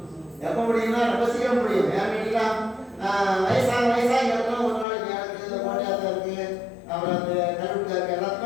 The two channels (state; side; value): drops out; right; at 4.9 s